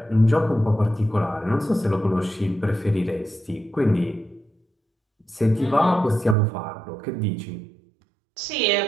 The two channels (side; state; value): left; drops out; at 6.4 s